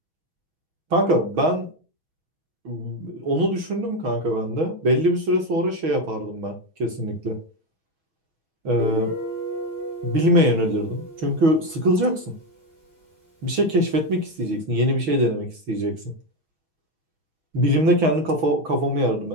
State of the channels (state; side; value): late; left; 6.2 ms